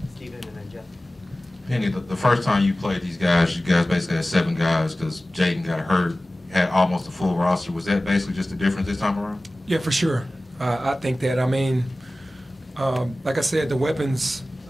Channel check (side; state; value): both; normal; correlation 0.97